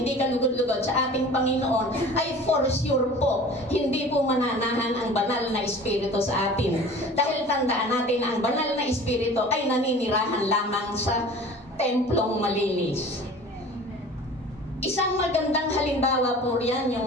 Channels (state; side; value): normal; both; correlation 0.42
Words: kalugod-lugod sa ating Panginoon, ay for sure po, hindi po mananahan ang banal na Espiritu sa atin. Dahil tandaan natin na ang banal na Espiritu ay naninirahan lamang sa templong malinis. Isang magandang halimbawa po riyan